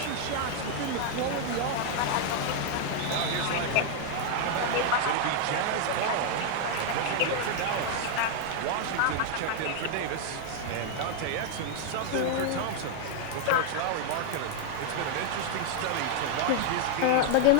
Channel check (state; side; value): different; both; correlation 0.00